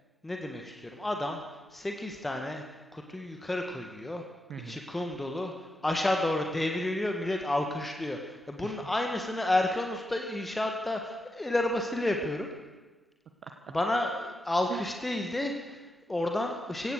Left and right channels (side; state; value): both; normal; correlation 0.86